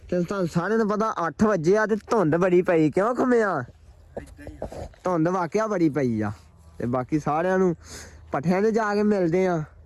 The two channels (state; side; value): identical; both; correlation 1.00